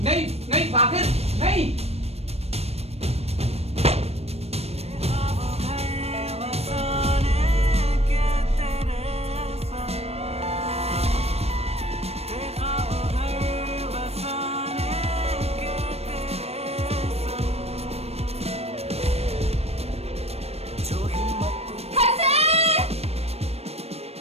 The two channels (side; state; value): left; late; 0.30 ms